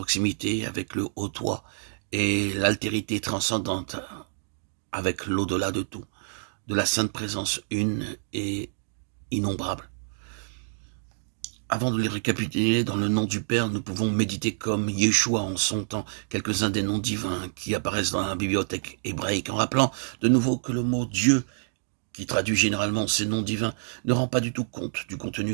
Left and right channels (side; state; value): left; silent; digital silence